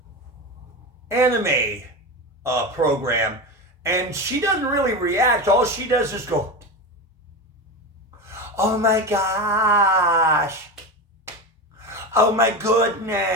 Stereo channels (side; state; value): both; normal; correlation 0.22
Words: anime program. And she doesn't really react. All she does is go, oh my gosh. Oh my